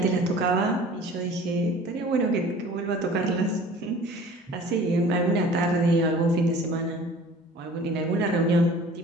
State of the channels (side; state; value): both; normal; correlation 0.46